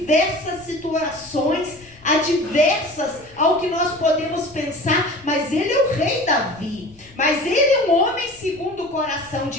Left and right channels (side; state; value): left; noise; rumble, 26 dB below the sound